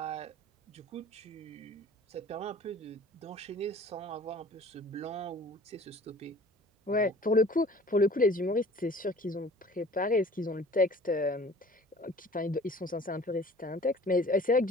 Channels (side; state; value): both; normal; correlation 0.48